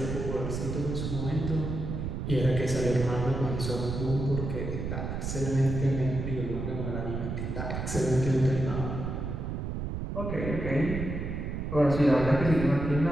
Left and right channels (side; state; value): right; noise; rumble, 4 dB below the sound